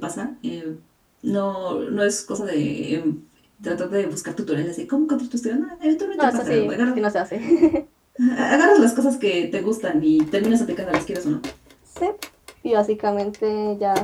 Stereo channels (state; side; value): identical; both; correlation 1.00